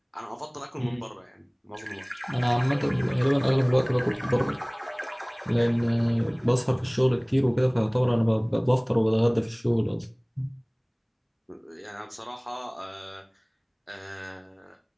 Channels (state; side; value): identical; both; correlation 1.00